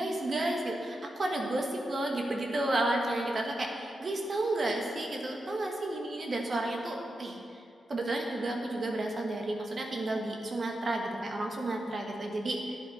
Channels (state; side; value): normal; both; correlation 0.88